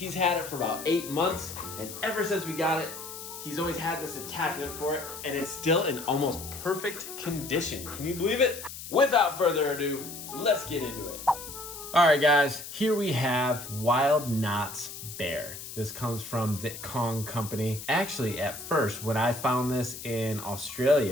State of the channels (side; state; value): left; noise; hiss, 11 dB below the sound